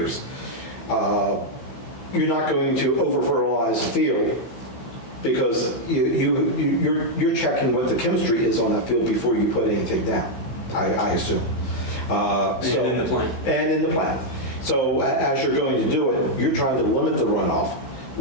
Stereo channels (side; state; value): right; late; 15 ms